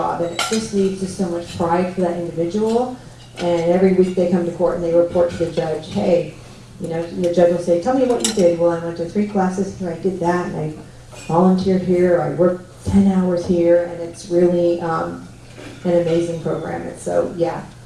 and it just leads to so much pride for that individual. And every week they come to court and they report to the judge, hey, you know, and the judge will say, tell me what you did. Well, I went to 3 classes here, I did that, and I volunteered here, I worked 10 hours here, and it's really an amazing program. And so, yeah,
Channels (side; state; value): both; identical; correlation 1.00